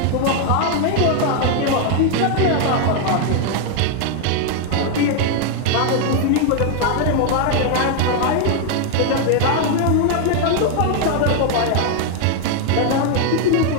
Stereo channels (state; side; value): different; both; correlation 0.00